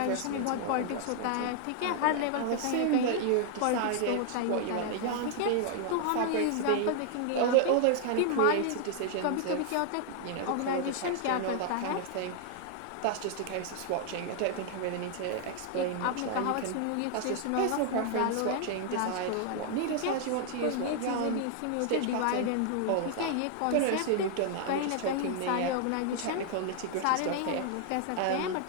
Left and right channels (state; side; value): different; both; correlation 0.00